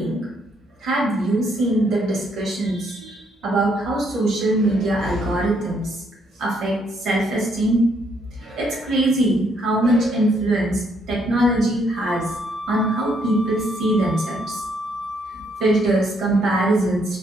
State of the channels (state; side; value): normal; both; correlation 0.71